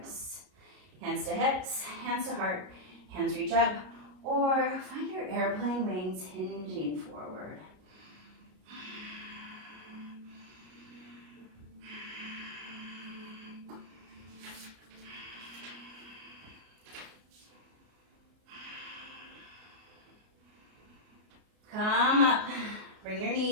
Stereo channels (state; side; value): late; left; 33 ms